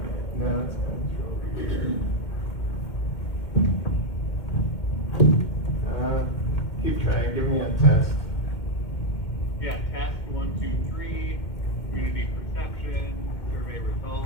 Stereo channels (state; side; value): late; right; 2.2 ms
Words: No, it's coming through. Keep trying, give me a test. Yeah, test 1, 2, 3, community perception, survey